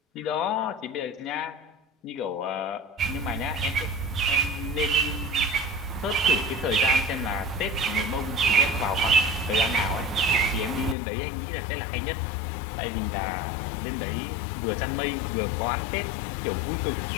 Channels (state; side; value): drops out; right; at 11.0 s